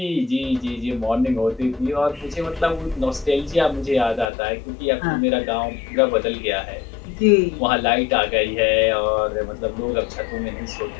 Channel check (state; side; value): drops out; right; at 4.3 s